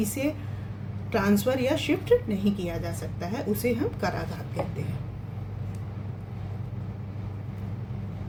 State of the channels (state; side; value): identical; both; correlation 1.00